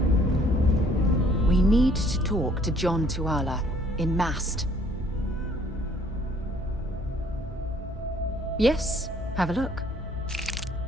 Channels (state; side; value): normal; both; correlation 0.59